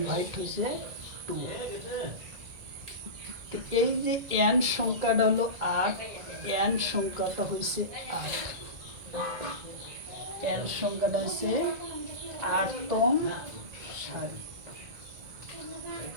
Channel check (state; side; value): late; left; 2.0 ms